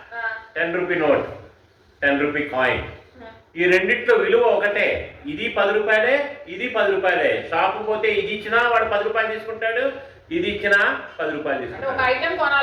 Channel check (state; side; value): identical; both; correlation 1.00